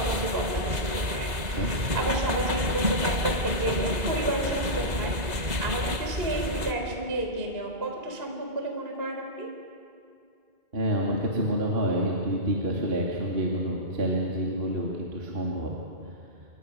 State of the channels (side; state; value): left; late; 2.0 ms